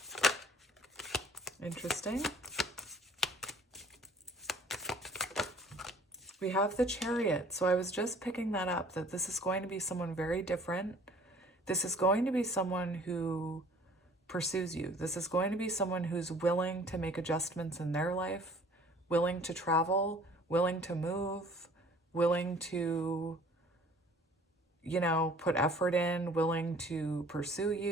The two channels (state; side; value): normal; both; correlation 0.52